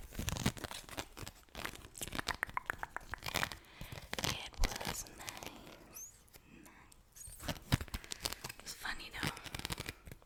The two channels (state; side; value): identical; both; correlation 1.00